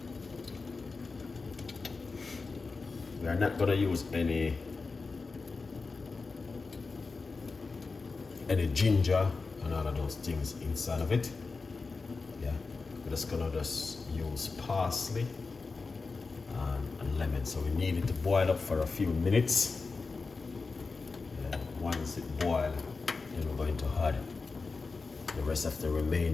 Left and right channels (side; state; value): right; quieter; 4.2 dB